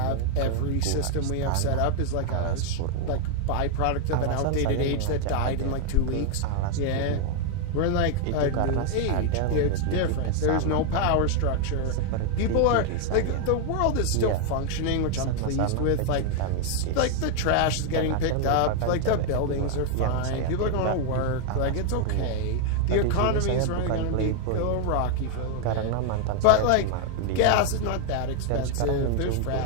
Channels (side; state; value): both; different; correlation 0.00